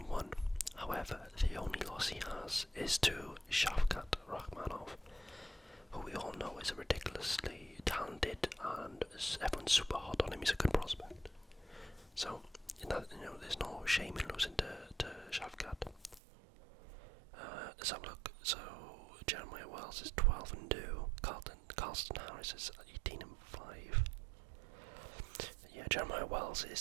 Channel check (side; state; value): left; drops out; at 16.2 s